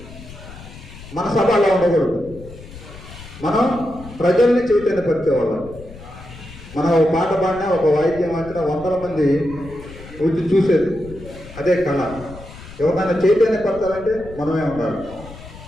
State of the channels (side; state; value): left; noise; rumble, 16 dB below the sound